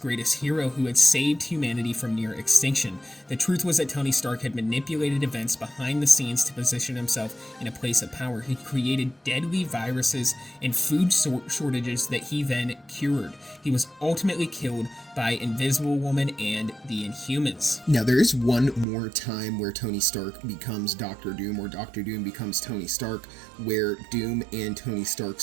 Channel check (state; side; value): drops out; left; at 18.9 s